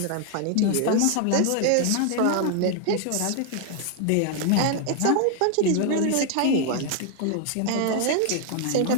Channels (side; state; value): both; different; correlation 0.00